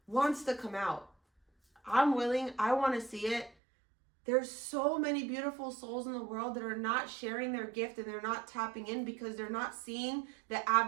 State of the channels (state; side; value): drops out; left; at 3.5 s